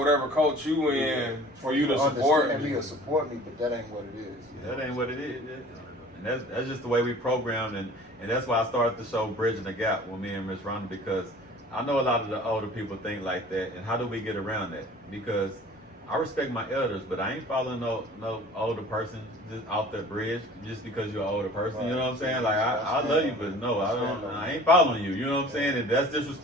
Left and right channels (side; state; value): both; normal; correlation 0.46